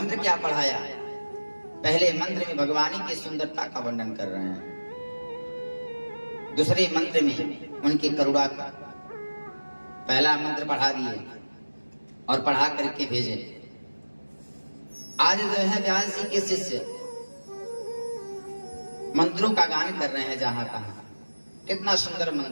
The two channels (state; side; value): inverted; both; correlation -1.00